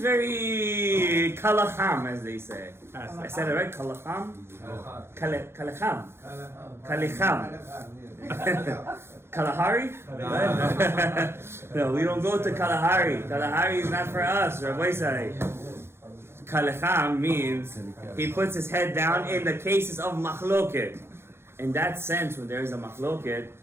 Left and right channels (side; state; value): left; late; 0.12 ms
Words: kalacham, as they say. I said it right? Kalacham? Kalacham. Kalahari? No, we don't go to Kalahari. Kalahari is not for us, Rabbi Isai. Kalacham means he puts his head down in the cases of machloket. In that sense, when there is a machloket,